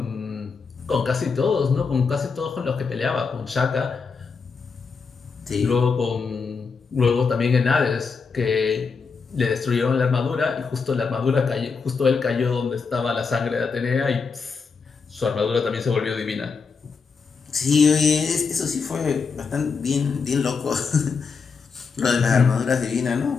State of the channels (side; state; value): right; quieter; 5.2 dB